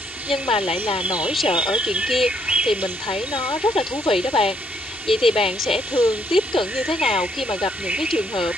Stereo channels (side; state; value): both; normal; correlation 0.71